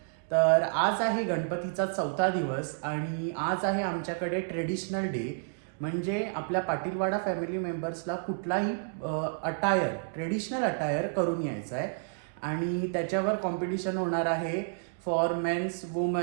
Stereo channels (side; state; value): left; silent; digital silence